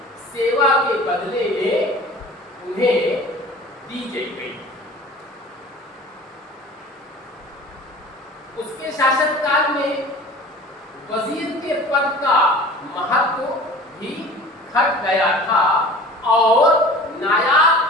सेवा के बदले में उन्हें दी गई। उसके शासनकाल में वजीर के पद का महत्व भी घट गया था और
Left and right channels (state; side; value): normal; both; correlation 0.42